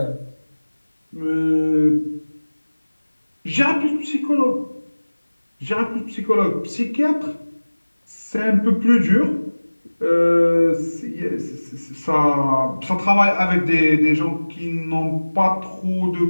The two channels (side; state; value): both; inverted; correlation -1.00